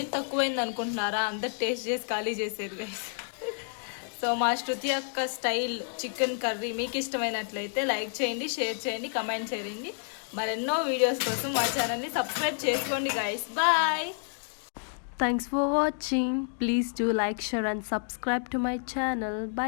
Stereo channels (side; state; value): right; silent; 58 dB below the other